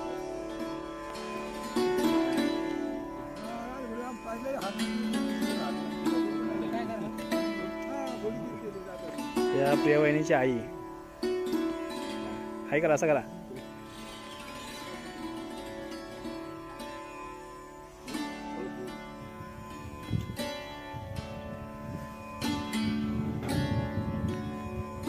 या प्रिया वहिनीची आई. हाय करा, असं करा.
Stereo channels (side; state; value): both; identical; correlation 1.00